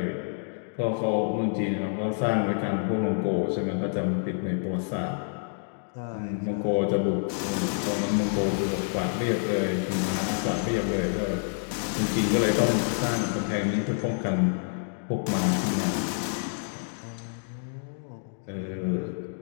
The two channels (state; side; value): silent; right; digital silence